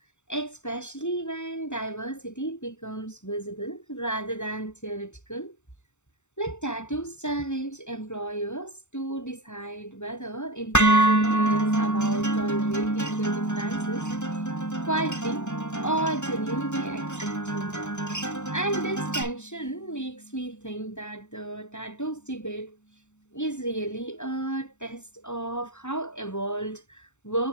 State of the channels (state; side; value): late; right; 0.84 ms